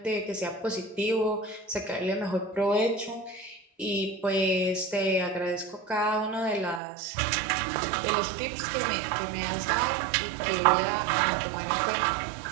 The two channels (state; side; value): drops out; left; at 6.8 s